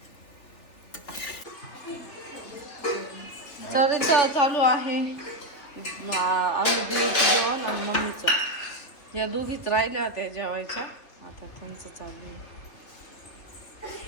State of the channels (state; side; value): late; right; 3.2 ms